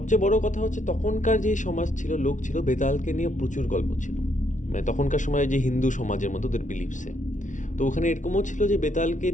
বড় কথা হচ্ছে তখনকার যে সমাজ ছিল, লোক ছিল, বেতালকে নিয়ে প্রচুর গল্প ছিল, মানে তখনকার সময় যে হিন্দু সমাজের মতো ওদের বিলিভসে। তো ওখানে এরকমও ছিল যে বেতালকে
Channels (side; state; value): right; late; 0.37 ms